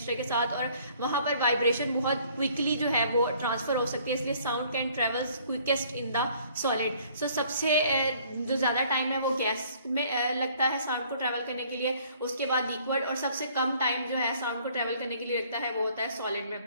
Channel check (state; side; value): inverted; both; correlation -0.58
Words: के साथ और वहां पर वाइब्रेशन बहुत क्विकली जो है वो ट्रांसफर हो सकती है, इसलिए sound can travels quickest in the solid. So सबसे जो ज्यादा टाइम है वो गैस में लगता है साउंड को ट्रेवल करने के लिए, उसके बाद लिक्विड, और सबसे कम टाइम जो है साउंड को ट्रेवल करने के लिए लगता है वो होता है सॉलिड में.